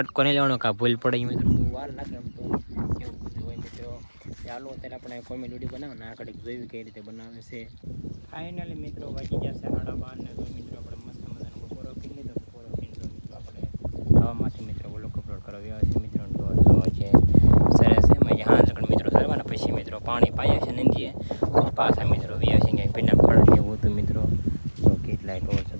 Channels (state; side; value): inverted; both; correlation -1.00